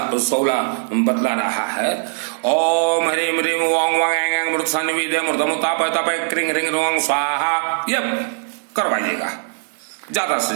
बतला रहा है, ओम ह्रीं ह्रीं ओम वांग मृत सन्निविदे मृतमुतापय तपय क्रिंग रिंग रोंग स्वाहा, ये करवाइएगा ज्यादा से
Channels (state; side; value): silent; left; digital silence